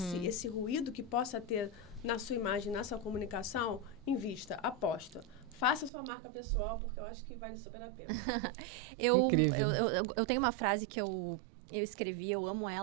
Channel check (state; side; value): drops out; left; at 5.9 s